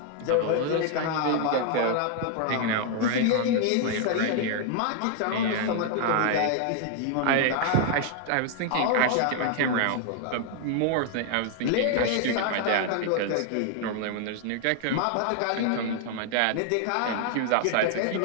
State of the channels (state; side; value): different; both; correlation 0.00